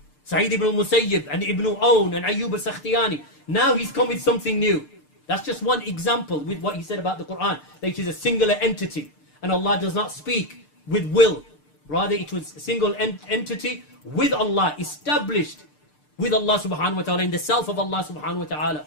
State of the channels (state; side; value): late; right; 6.7 ms